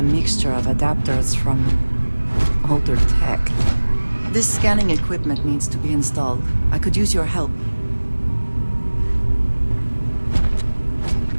mixture of adapters from older tech. This scanning equipment needs to be installed. I could use your help.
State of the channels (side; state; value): both; inverted; correlation -1.00